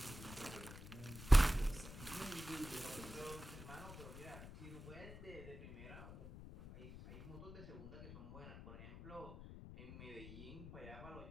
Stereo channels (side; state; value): left; noise; rumble, 12 dB below the sound